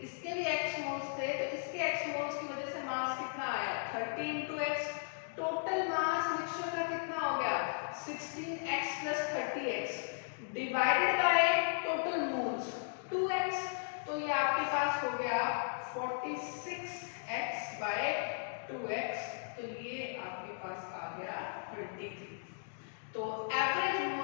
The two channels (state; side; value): silent; right; digital silence